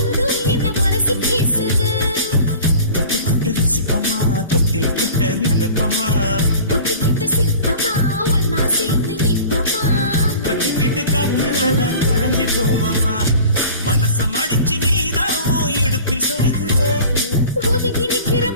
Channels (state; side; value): inverted; both; correlation -0.42